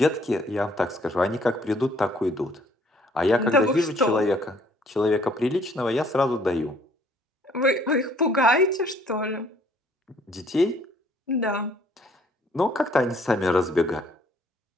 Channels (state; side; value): normal; both; correlation 0.61